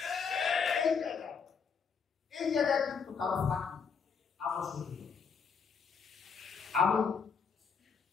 এই জায়গায় কিন্তু কারো ফাঁকি আমরা শুরু করি। আমি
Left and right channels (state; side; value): quieter; right; 6.0 dB